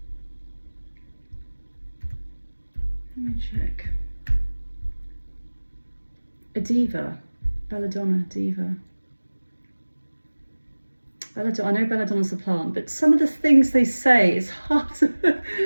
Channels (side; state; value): both; inverted; correlation -1.00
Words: Let me check. A diva. Belladonna, diva. I know belladonna's a plant, but some of the things they say, it's hard to